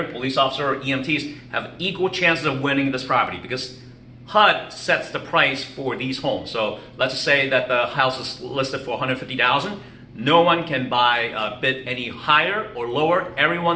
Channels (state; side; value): identical; both; correlation 1.00